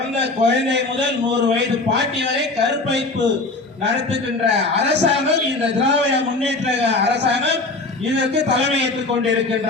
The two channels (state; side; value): quieter; right; 3.3 dB